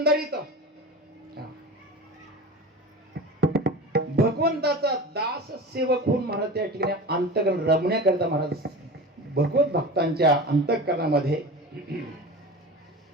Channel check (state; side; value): normal; both; correlation 0.32